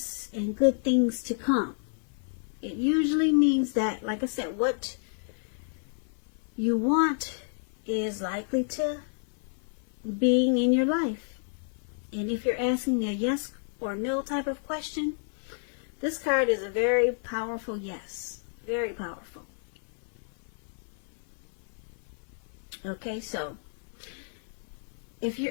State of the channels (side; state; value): right; silent; 58 dB below the other